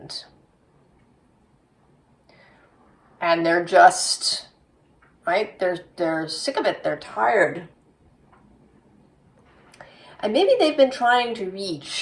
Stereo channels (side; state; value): both; identical; correlation 1.00